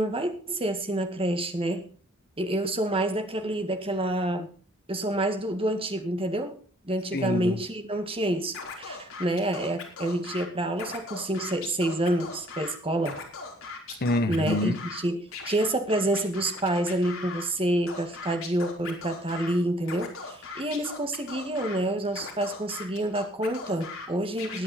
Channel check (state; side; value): normal; both; correlation 0.60